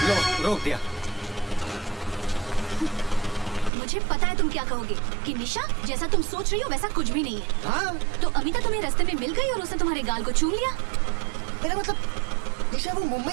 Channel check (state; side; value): drops out; left; at 3.7 s